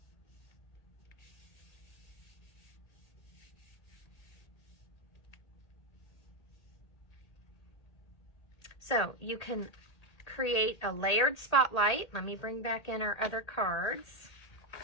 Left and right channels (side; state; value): right; late; 1.8 ms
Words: So you can create a layered spotlight. Let me bring back in our other cards.